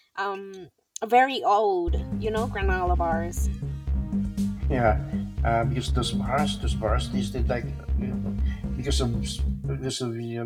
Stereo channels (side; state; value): both; identical; correlation 1.00